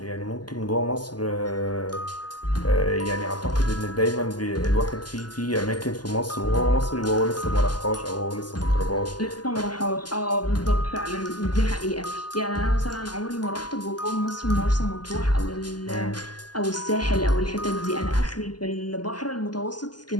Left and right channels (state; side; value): late; right; 0.70 ms